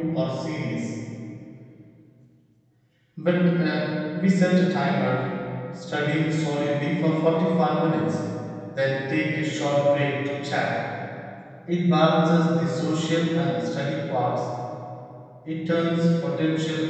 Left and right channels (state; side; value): identical; both; correlation 1.00